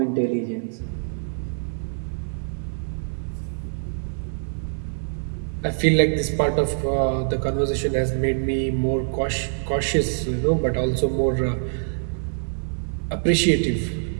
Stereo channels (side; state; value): left; silent; 62 dB below the other